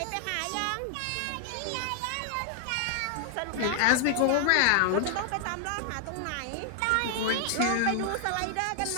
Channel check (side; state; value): both; different; correlation 0.00